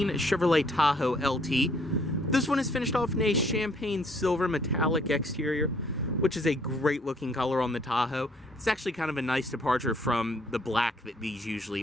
Chevrolet Tahoe LT. This one is finished off in a champagne silver metallic exterior, which is a great looking color on the Tahoe. It's actually kind of a nice departure from the black that these usually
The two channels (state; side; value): normal; both; correlation 0.64